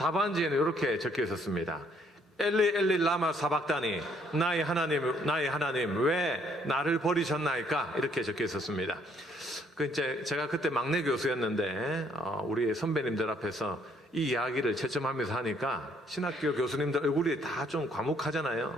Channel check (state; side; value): normal; both; correlation 0.66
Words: 이렇게 적혀 있었습니다. 엘리 엘리 라마 사박다니, 나의 하나님 왜 나를 버리셨나이까? 이렇게 적혀 있었습니다. 제가 그때 막내 교수였는데 우리 선배님들 앞에서 이 이야기를 채점하면서 하니까 신학교 교수님들 얼굴이 다 좀